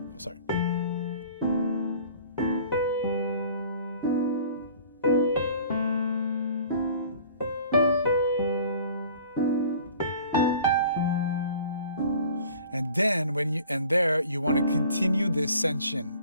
sorry. And then you want to continue the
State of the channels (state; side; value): inverted; both; correlation -0.49